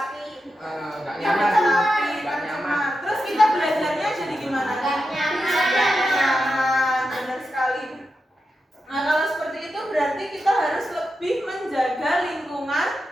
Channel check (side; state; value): both; normal; correlation 0.88